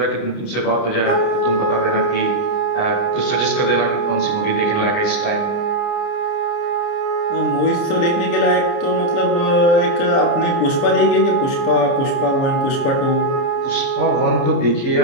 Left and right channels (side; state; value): right; late; 29 ms